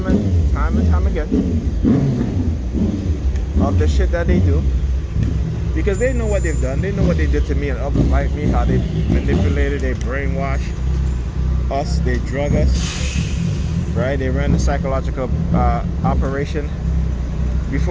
and time again of the shit that they do, because they know what they've done. They know what they did to me and others like me, how they manipulated, they brainwash us, they drug us, right? They ran the psychological operation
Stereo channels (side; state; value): both; identical; correlation 1.00